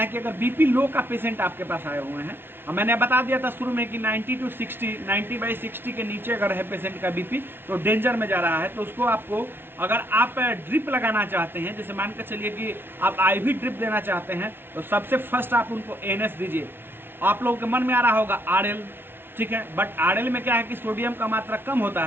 कि अगर बीपी लो का पेशेंट आपके पास आए हुए हैं, मैंने बता दिया था शुरू में कि 90/60 के नीचे अगर है पेशेंट का बीपी तो डेंजर में जा रहा है, तो उसको आपको, अगर आप ड्रिप लगाना चाहते हैं, जैसे मान कर चलिए कि आप IV ड्रिप देना चाहते हैं, तो सबसे फर्स्ट आप उनको NS दीजिए। आप लोगों के मन में आ रहा होगा RL, ठीक है, बट RL में क्या है कि सोडियम का मात्रा कम होता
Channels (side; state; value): left; late; 0.11 ms